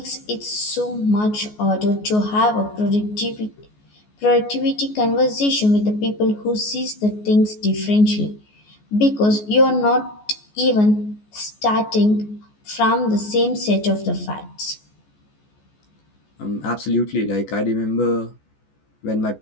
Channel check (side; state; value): right; late; 14 ms